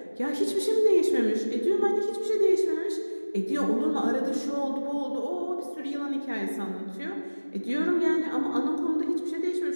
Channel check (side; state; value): both; inverted; correlation -1.00